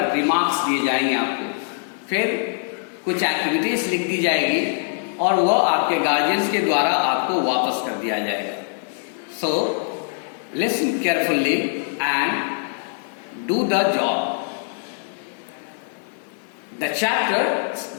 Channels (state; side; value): silent; right; digital silence